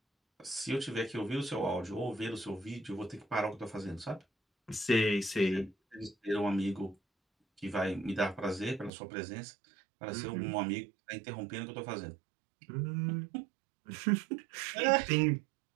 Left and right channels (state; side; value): drops out; left; at 8.9 s